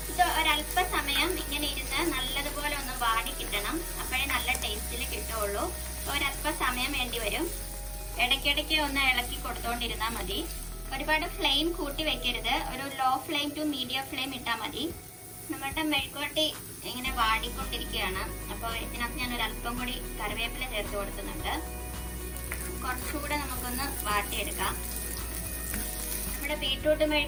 ഇത് ഒരല്പ സമയം ഇങ്ങനെ ഇരുന്ന് നല്ലതുപോലെ ഒന്ന് വാടി കിട്ടണം. അപ്പോഴേ നല്ല ടേസ്റ്റിൽ കിട്ടുള്ളൂ. ഒരല്പ സമയം വേണ്ടി വരും. ഇടയ്ക്കിടയ്ക്ക് ഒന്ന് ഇളക്കി കൊടുത്തോണ്ടിരുന്നാൽ മതി. ഒരുപാട് ഫ്ലെയിം കൂട്ടി വെക്കരുത്. ഒരു low flame to medium flame ഇട്ടാൽ മതി. നമ്മുടെ മെഴുക്കുവരട്ടി ഇങ്ങനെ വാടിക്കൊണ്ടിരിക്കുകയാണ്. അപ്പോൾ ഇതിനകത്ത് ഞാൻ ഒരു അല്പം കൂടി കറിവേപ്പില ചേർത്ത് കൊടുക്കുന്നുണ്ട്. കുറച്ചുകൂടെ നമുക്കൊന്ന് വാട്ടിയെടുക്കാം. നമ്മുടെ ബീട്രൂട്ട്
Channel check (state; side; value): identical; both; correlation 1.00